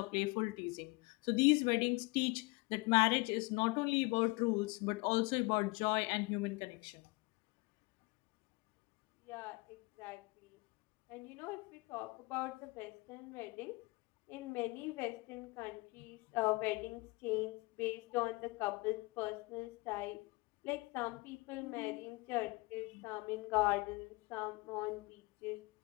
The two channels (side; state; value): right; quieter; 25.4 dB